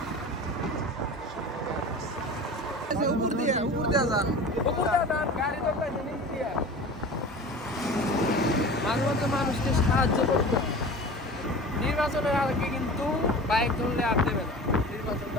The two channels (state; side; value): normal; both; correlation 0.36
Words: মাঝে মধ্যে মানুষকে সাহায্য করতে হবে। নির্বাচনের আগে কিন্তু বাইক ধরলে আর দেবে না, নির্বাচন